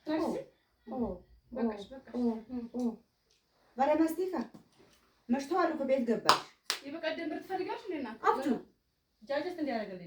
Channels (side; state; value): both; identical; correlation 1.00